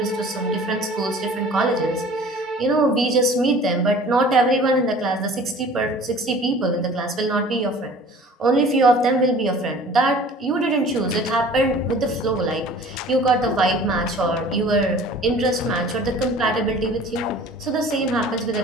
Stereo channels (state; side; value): normal; both; correlation 0.47